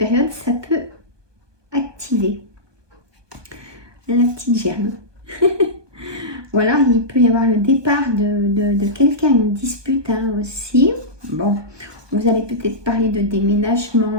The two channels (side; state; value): left; late; 1.2 ms